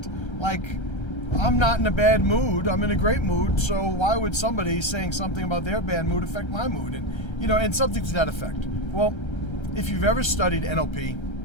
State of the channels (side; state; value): right; late; 1.3 ms